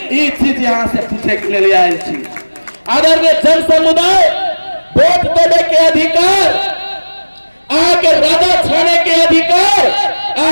ई चीज यहाँ से पूछे के लिए आयल छी। आदरणीय जन समुदाय, वोट देने के अधिकार, आके राजा छाने के अधिकार,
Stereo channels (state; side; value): inverted; both; correlation -1.00